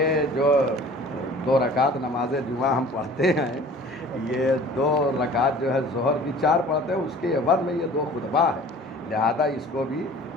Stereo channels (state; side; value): normal; both; correlation 0.46